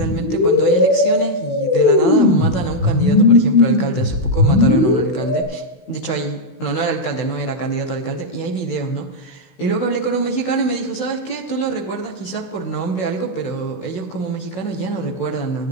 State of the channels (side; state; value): right; late; 16 ms